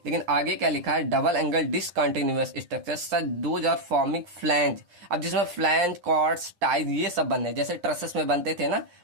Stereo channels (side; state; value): left; late; 9.9 ms